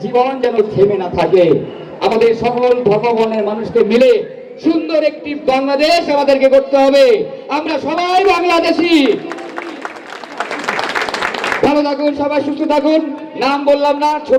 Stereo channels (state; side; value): identical; both; correlation 1.00